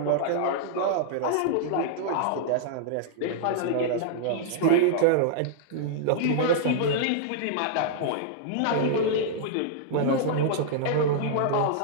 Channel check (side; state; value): both; different; correlation -0.01